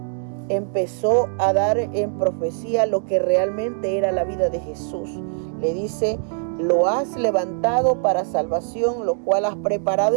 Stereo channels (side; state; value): left; silent; digital silence